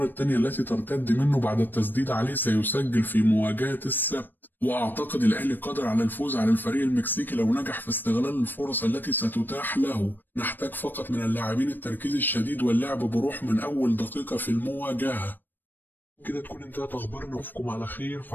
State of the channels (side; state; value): right; late; 0.092 ms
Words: الثانية التي ترتد منه بعد التسديد عليه سيسجل في مواجهة السبت. وأعتقد الأهلي قادر على الفوز على الفريق المكسيكي لو نجح في استغلال الفرص التي ستتاح له. نحتاج فقط من اللاعبين التركيز الشديد واللعب بروح من أول دقيقة في المواجهة. كده تكون انتهت أخبارنا، وأشوفكم على خير في